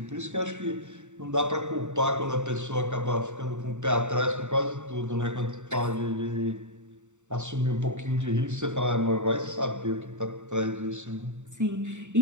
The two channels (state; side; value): late; left; 0.84 ms